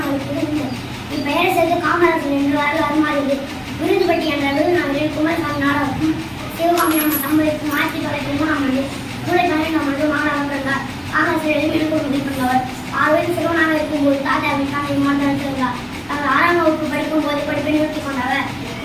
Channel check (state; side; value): identical; both; correlation 1.00